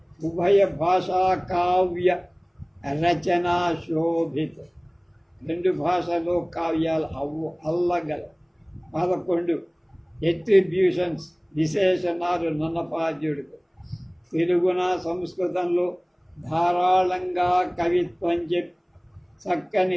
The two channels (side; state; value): both; identical; correlation 1.00